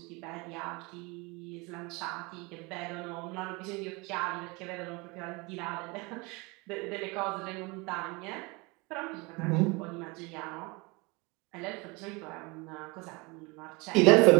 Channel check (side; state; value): left; quieter; 26.8 dB